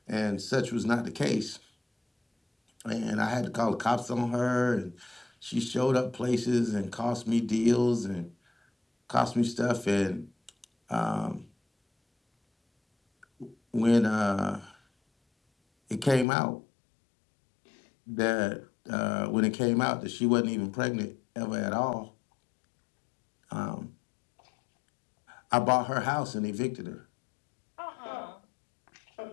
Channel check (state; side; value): drops out; right; at 16.2 s